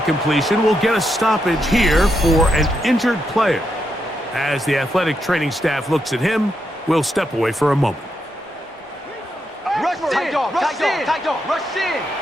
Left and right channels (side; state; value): both; normal; correlation 0.82